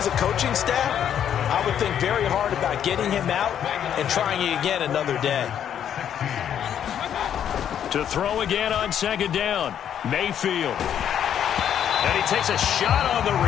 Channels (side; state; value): right; quieter; 9.4 dB